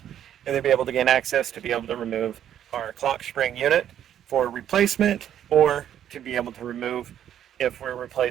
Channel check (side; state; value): left; quieter; 10.3 dB